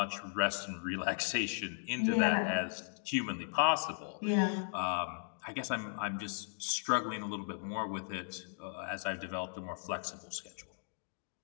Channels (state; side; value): silent; right; digital silence